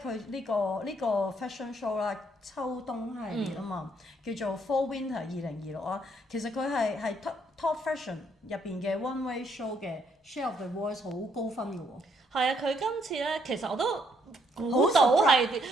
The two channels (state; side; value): normal; both; correlation 0.70